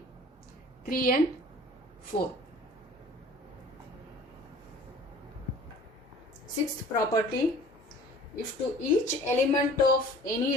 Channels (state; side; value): normal; both; correlation 0.47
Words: 3 and 4. Sixth property, if to each element of